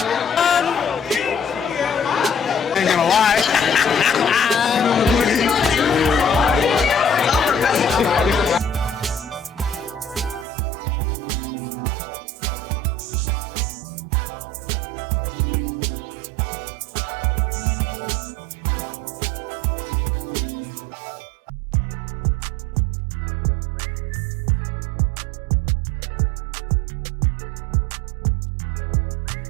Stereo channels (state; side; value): drops out; left; at 10.5 s